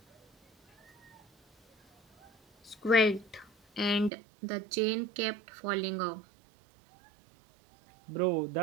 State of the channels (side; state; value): left; drops out; at 4.1 s